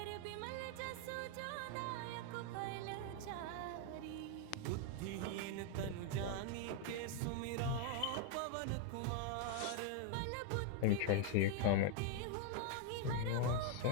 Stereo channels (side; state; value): both; different; correlation 0.00